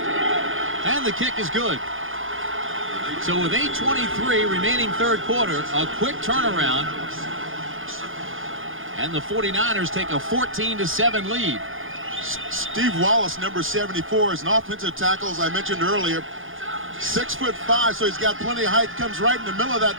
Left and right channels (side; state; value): left; late; 0.59 ms